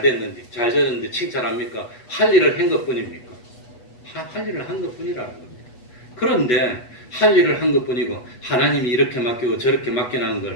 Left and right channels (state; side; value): late; right; 8.2 ms